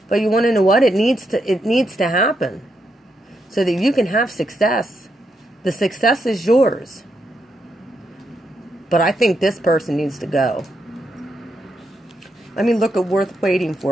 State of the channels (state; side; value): normal; both; correlation 0.81